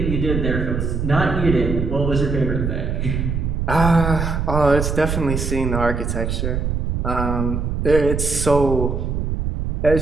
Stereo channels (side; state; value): right; noise; rumble, 1 dB below the sound